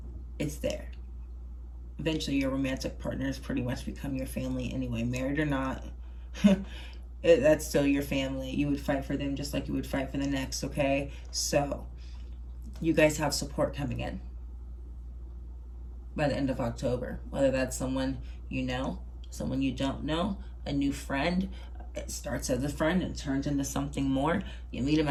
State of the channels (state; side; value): identical; both; correlation 1.00